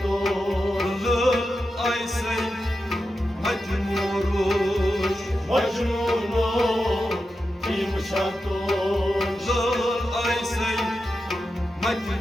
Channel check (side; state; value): both; normal; correlation 0.90